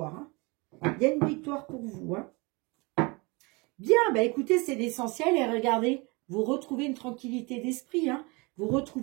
Il y a une victoire pour vous. Bien, écoutez, c'est l'essentiel. Et regardez, vous retrouvez une tranquillité d'esprit. Vous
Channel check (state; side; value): quieter; left; 27.3 dB